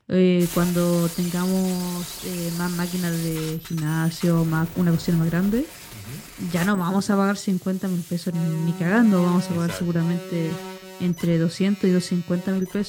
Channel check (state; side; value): identical; both; correlation 1.00